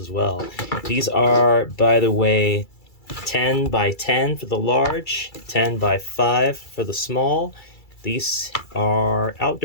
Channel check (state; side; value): late; right; 2.3 ms